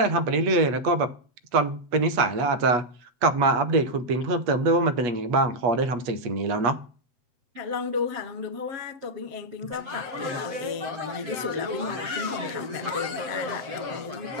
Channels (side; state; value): left; late; 7.7 ms